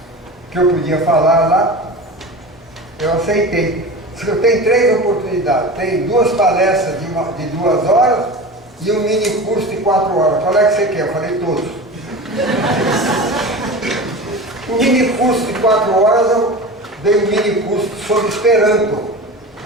que eu podia falar lá, eu aceitei. Eu tenho 3 oportunidades, tem 2 palestras de 2 horas e um mini curso de 4 horas. Qual é que você quer? Eu falei todos. O mini curso de 4 horas eu dei um mini curso sobre Esperanto.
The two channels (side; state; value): both; normal; correlation 0.32